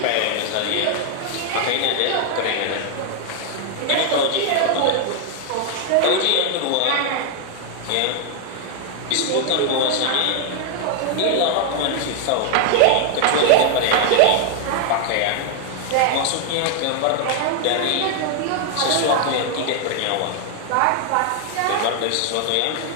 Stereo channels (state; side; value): different; both; correlation 0.00